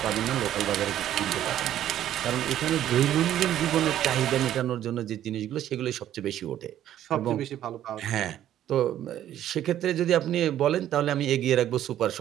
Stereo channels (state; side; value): quieter; left; 11.7 dB